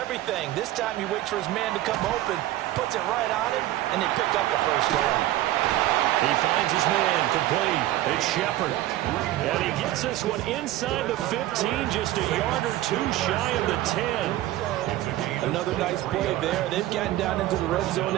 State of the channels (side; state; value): left; quieter; 15.1 dB